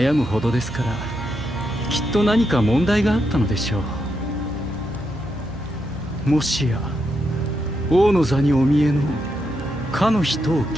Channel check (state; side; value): normal; both; correlation 0.82